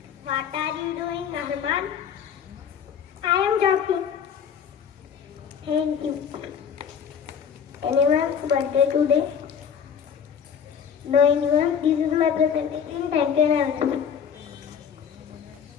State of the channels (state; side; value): quieter; right; 7.6 dB